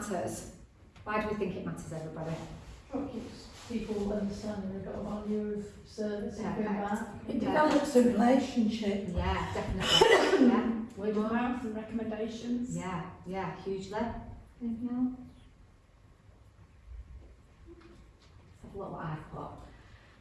Why do we think it matters, everybody? It keeps people understanding they've got a value of service and going back. It develops a relationship. Yeah, definitely. Yeah. Word of mouth and recommendations. Yeah, hugely. Anything else? Let's have a look what I've got.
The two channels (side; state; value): both; identical; correlation 1.00